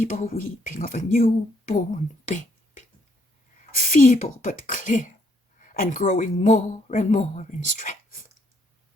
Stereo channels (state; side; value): normal; both; correlation 0.70